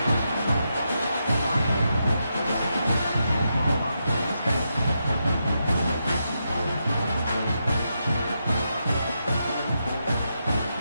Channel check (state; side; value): inverted; both; correlation -0.84